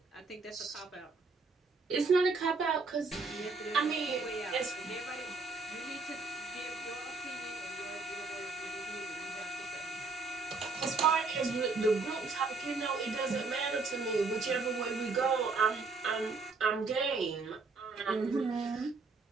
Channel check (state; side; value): quieter; left; 4.1 dB